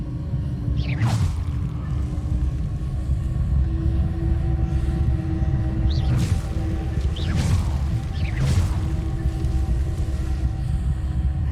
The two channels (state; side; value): identical; both; correlation 1.00